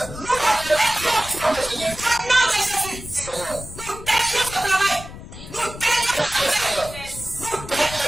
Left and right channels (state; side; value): noise; left; rumble, 13 dB below the sound